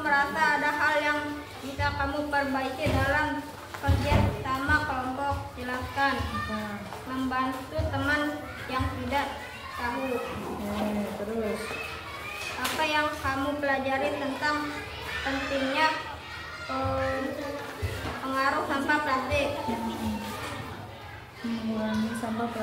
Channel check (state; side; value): identical; both; correlation 1.00